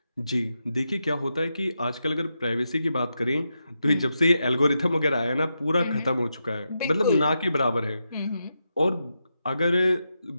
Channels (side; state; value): both; inverted; correlation -0.86